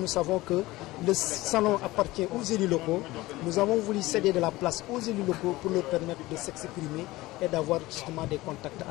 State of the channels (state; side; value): quieter; right; 19.0 dB